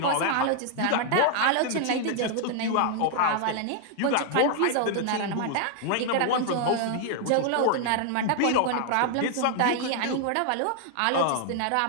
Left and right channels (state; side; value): different; both; correlation 0.00